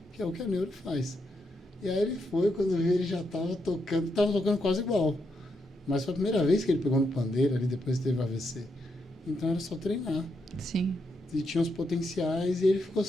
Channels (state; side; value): normal; both; correlation 0.81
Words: que é o que a neuro faz. E aí ele foi, quando viu, ele já estava tocando quase igual. Mas foi a primeira vez que ele pegou no pandeiro ali, depois teve AVC. Então era só treinar. Sim. E tinha os potenciais e ele ficou